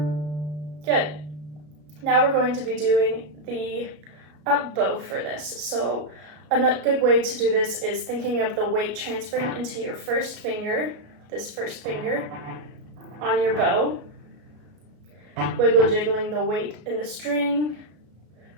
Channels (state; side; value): late; left; 33 ms